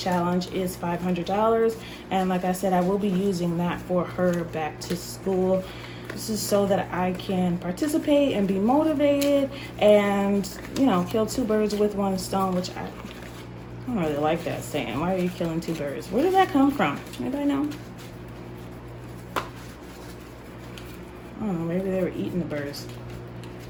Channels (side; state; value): both; identical; correlation 1.00